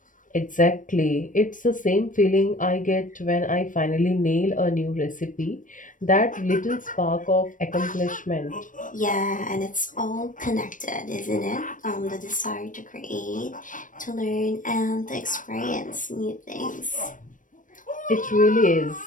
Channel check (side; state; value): right; late; 0.38 ms